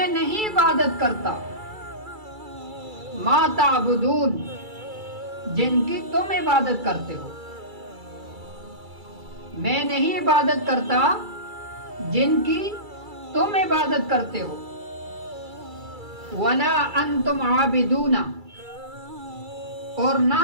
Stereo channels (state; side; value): late; left; 2.3 ms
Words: نہیں عبادت کرتا، ما تعبدون، جن کی تم عبادت کرتے ہو، میں نہیں عبادت کرتا جن کی تم عبادت کرتے ہو، ولا انتم عابدون، اور نہ